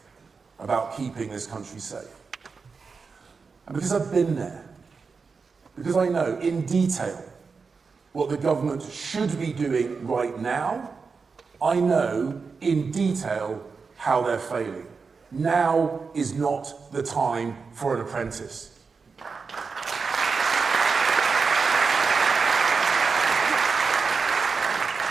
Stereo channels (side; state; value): left; quieter; 4.9 dB